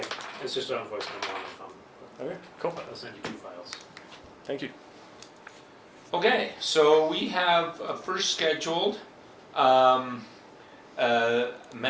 it's just on voice memo on the phone. Okay, cool. I'll send you 2 files. Thank you. Okay, so we have first scheduled MAG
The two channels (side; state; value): both; identical; correlation 1.00